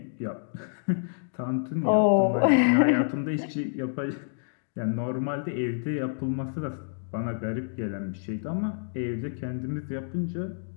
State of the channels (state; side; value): silent; right; digital silence